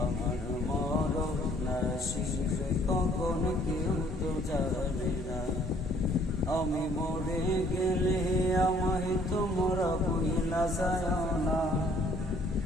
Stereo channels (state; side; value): normal; both; correlation 0.60